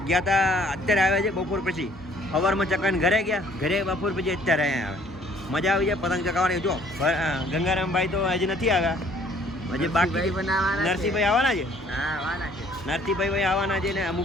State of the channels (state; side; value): normal; both; correlation 0.59